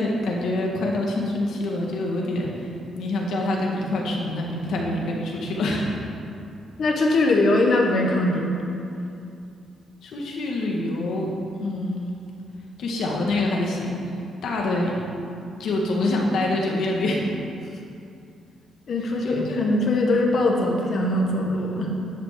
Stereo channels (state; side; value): normal; both; correlation 0.73